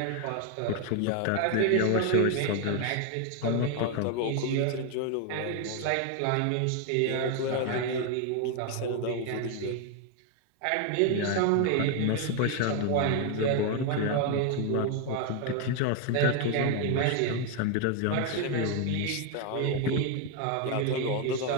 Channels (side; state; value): both; different; correlation 0.01